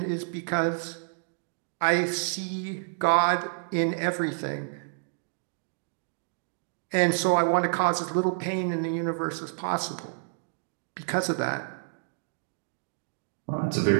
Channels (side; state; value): left; silent; digital silence